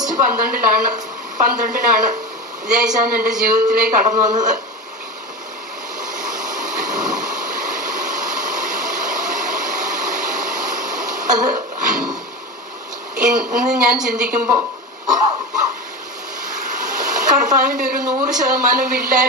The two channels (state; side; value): normal; both; correlation 0.25